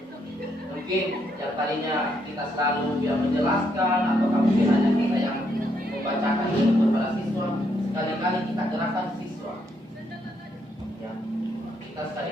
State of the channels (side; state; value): both; normal; correlation 0.75